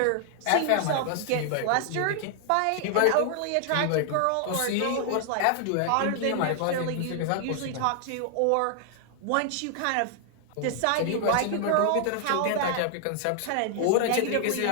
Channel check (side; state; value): both; different; correlation 0.00